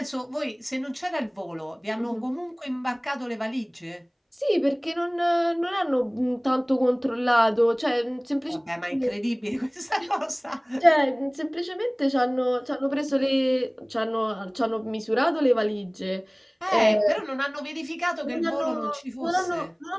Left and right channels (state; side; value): identical; both; correlation 1.00